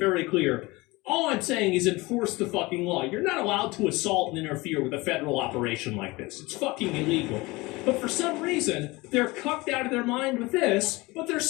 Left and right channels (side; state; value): right; quieter; 22.5 dB